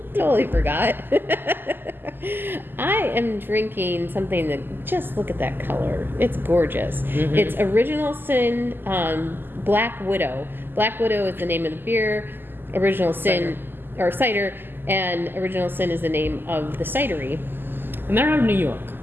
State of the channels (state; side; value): late; left; 0.095 ms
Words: Totally forgot. I am drinking something that, just look at that color. It's gorgeous. Mm-hmm. It's Original Sin Black Widow. Black Widow is the name of the beer. Original Sin, or cider, and Original Sin is the name of the cidery. And they're out of New York.